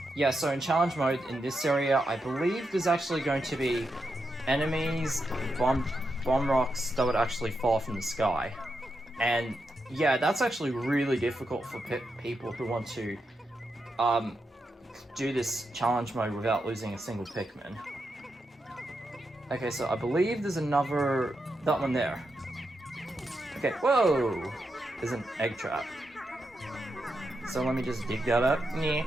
Yeah, so in challenge mode, in this area, I believe there's actually going to be enemies, bomb rocks that would actually fall from the sky. And yeah, that's actually really difficult for people who want to do this challenge mode without losing a single Pikmin. Okay, so I believe there's another... that one there. Okay, whoa! There's an egg trap. So let me just dig that up.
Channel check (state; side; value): normal; both; correlation 0.85